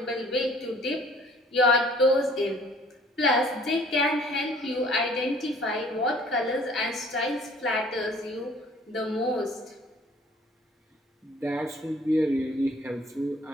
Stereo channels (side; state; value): both; normal; correlation 0.55